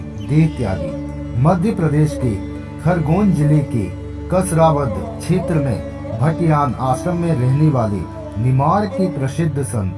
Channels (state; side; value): identical; both; correlation 1.00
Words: देह त्यागी। मध्य प्रदेश के खरगोन जिले के कसरावद क्षेत्र में भटियान आश्रम में रहने वाले निमाड़ के प्रसिद्ध